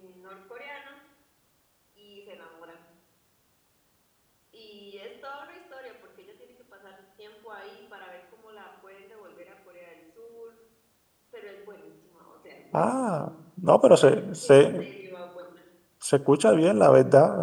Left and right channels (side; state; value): both; identical; correlation 1.00